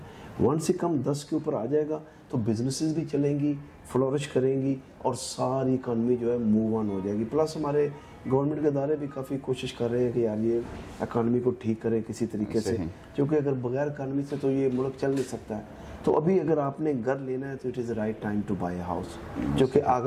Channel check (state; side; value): identical; both; correlation 1.00